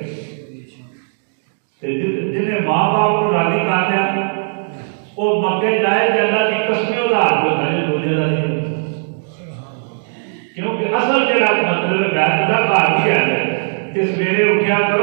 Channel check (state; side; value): silent; left; digital silence